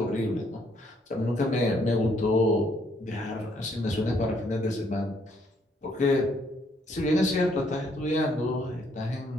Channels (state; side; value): normal; both; correlation 0.69